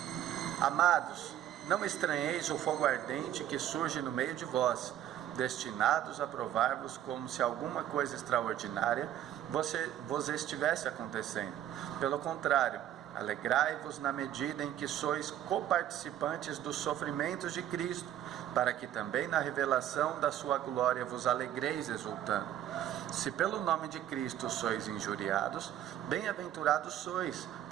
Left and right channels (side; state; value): left; quieter; 11.5 dB